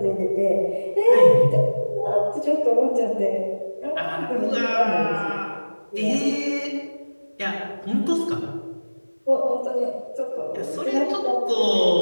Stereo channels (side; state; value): both; inverted; correlation -1.00